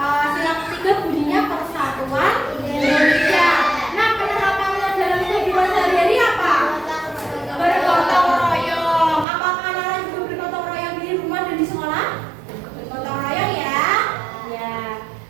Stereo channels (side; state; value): left; drops out; at 9.2 s